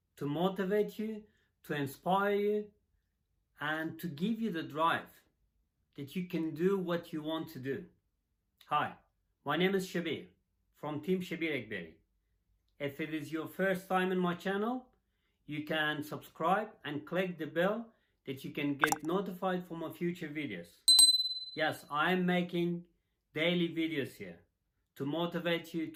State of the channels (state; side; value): identical; both; correlation 1.00